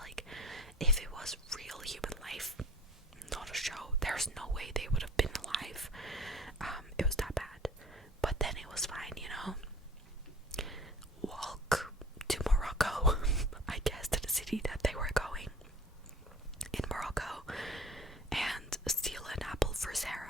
if it was real human life, not a show, there's no way they would have been alive. It was that bad. But then it was fine, you know. Walk to Morocco, I guess, to the city that they were going in Morocco, and steal an apple for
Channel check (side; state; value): both; normal; correlation 0.45